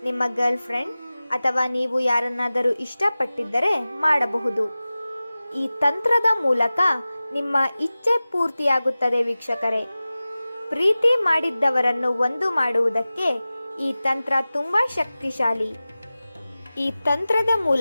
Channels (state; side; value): inverted; both; correlation -0.97